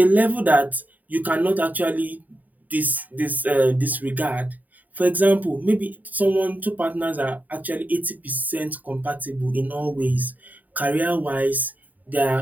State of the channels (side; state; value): left; late; 0.081 ms